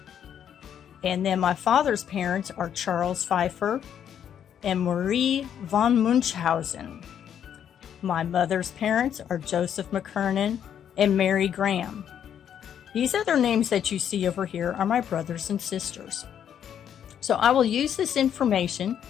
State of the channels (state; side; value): quieter; right; 9.1 dB